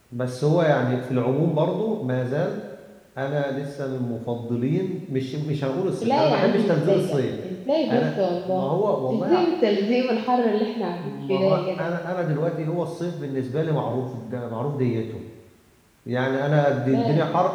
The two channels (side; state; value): both; identical; correlation 1.00